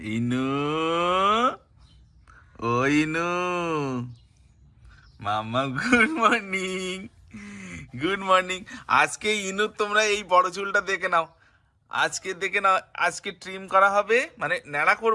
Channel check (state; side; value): identical; both; correlation 1.00